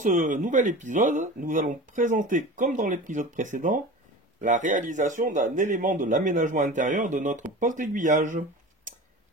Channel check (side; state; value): both; normal; correlation 0.34